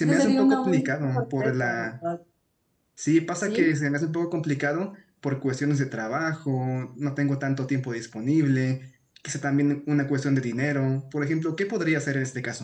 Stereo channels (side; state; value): both; identical; correlation 1.00